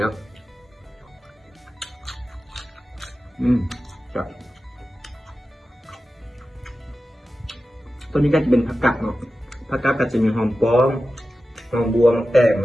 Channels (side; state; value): both; normal; correlation 0.93